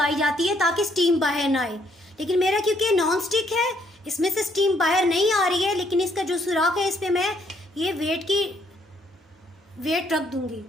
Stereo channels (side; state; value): both; normal; correlation 0.69